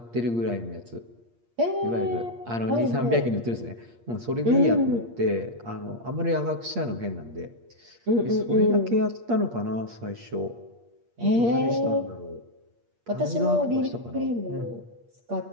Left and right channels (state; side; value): late; left; 8.5 ms